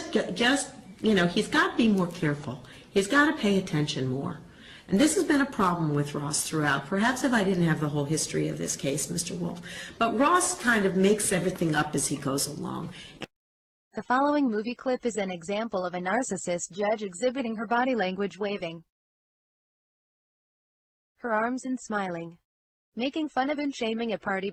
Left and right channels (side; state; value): both; identical; correlation 1.00